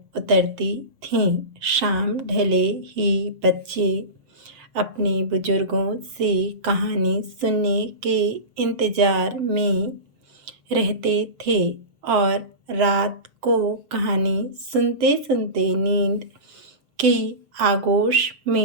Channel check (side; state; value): left; late; 7.0 ms